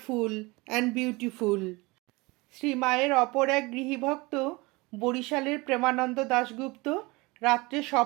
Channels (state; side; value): quieter; left; 24.1 dB